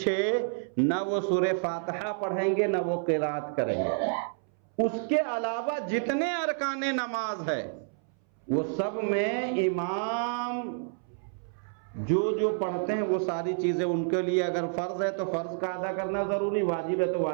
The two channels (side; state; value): left; silent; 58 dB below the other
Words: نہ وہ سورہ فاتحہ پڑھیں گے نہ وہ قرات کریں گے. اس کے علاوہ جتنے ارکان نماز ہے وہ سب میں امام جو پڑھتے ہیں وہ ساری چیزیں ان کے لیے اگر فرض ہے تو فرض کا ادا کرنا ضروری، واجب ہے تو